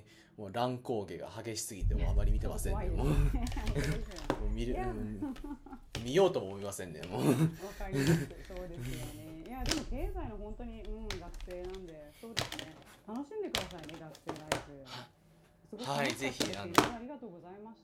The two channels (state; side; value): identical; both; correlation 1.00